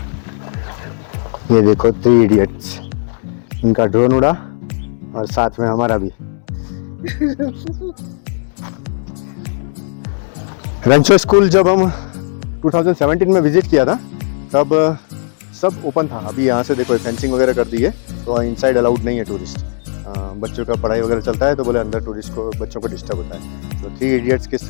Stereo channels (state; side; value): silent; right; 69 dB below the other